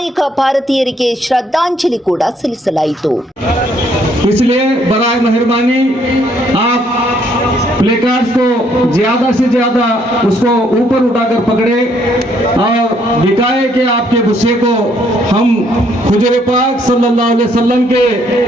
ಭಾರತೀಯರಿಗೆ ಶ್ರದ್ಧಾಂಜಲಿ ಕೂಡ ಸಲ್ಲಿಸಲಾಯಿತು. इसलिए बराए मेहरबानी आप प्लेकार्ड्स को ज्यादा से ज्यादा उसको ऊपर उठाकर पकड़े और दिखाए कि आपके गुस्से को हम हुजूर पाक सल्लल्लाहु अलैहि वसल्लम के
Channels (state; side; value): normal; both; correlation 0.68